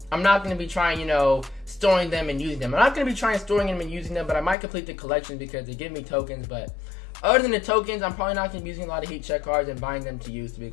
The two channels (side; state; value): right; drops out; at 4.5 s